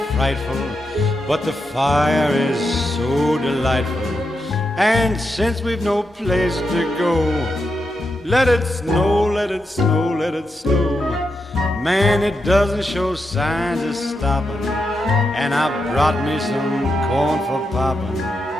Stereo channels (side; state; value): both; normal; correlation 0.85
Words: frightful, but the fire is so delightful. And since we've no place to go, let it snow, let it snow, let it snow. Man, it doesn't show signs of stopping, and I brought me some corn for popping.